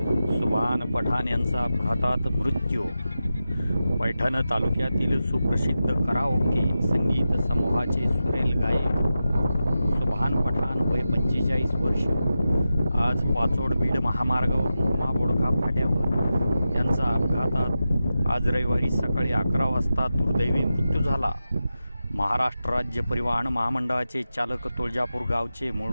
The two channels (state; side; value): inverted; both; correlation -0.92